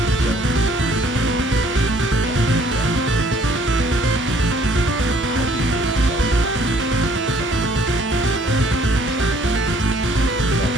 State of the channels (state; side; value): normal; both; correlation 0.60